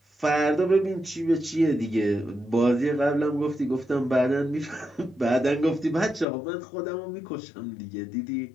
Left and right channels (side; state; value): right; drops out; at 6.2 s